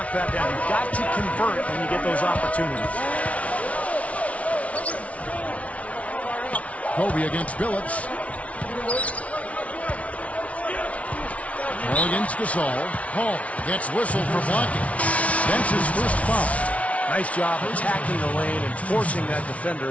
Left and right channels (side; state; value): right; late; 0.065 ms